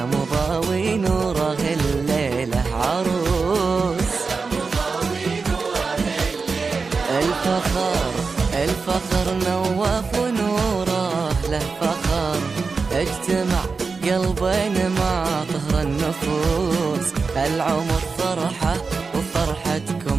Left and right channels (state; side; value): quieter; left; 4.6 dB